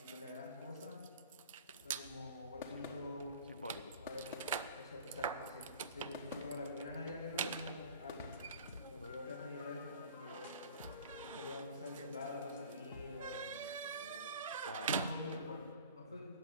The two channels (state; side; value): inverted; both; correlation -0.44